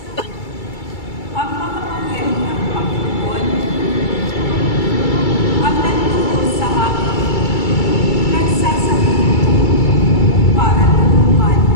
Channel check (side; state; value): right; late; 2.3 ms